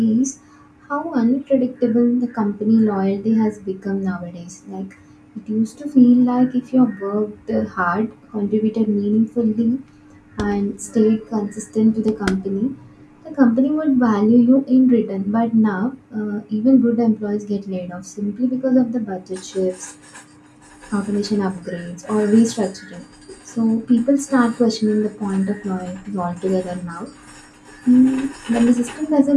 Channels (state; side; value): identical; both; correlation 1.00